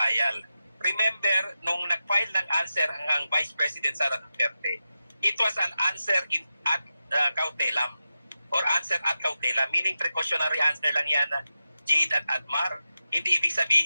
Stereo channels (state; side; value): inverted; both; correlation -0.91